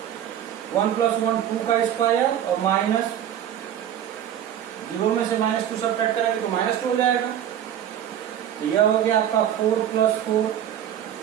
1 + 1 2 का स्क्वायर और माइनस 0 में से -2 सब्ट्रैक्ट करेंगे तो -2 हो जाएगा। यह हो गया आपका 4 + 4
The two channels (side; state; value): left; quieter; 10.4 dB